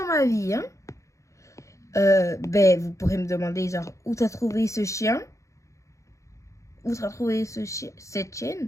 ma vie, hein. Vous pourrez me demander, genre, où t'as trouvé ce chien? Où t'as trouvé cette chienne?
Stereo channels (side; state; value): right; late; 0.15 ms